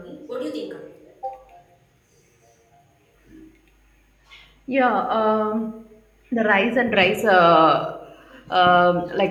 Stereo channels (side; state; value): both; identical; correlation 1.00